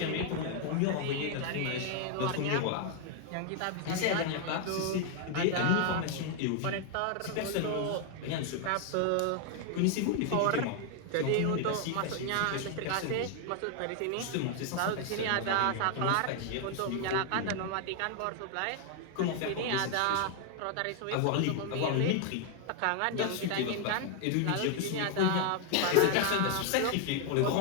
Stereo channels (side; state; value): both; different; correlation 0.00